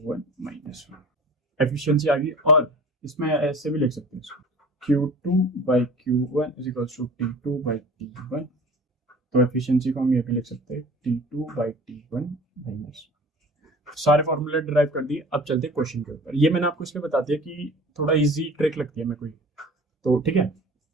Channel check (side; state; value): both; normal; correlation 0.42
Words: minus 1। Efficiency आ गई, और इसमें ऐसे भी लिख सकते हैं इसको, Q2 by Q1 is equals to T2 by T1। तो एफिशिएंसी को हम ये भी लिख सकते हैं T2 बाई T1 माइनस। सारे फॉर्मूले डिराइव कर दिए, अब चलते हैं क्वेश्चन के ऊपर। ये मैंने आपको इसलिए बता दिया कि थोड़ा इजी ट्रिक लगती है मेरे को, तो ठीक है,